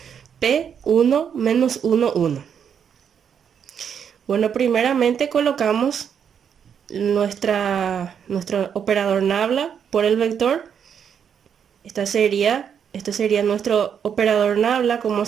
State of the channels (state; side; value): quieter; left; 7.8 dB